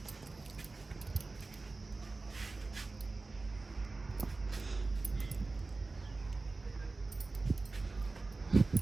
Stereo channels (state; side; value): quieter; left; 3.6 dB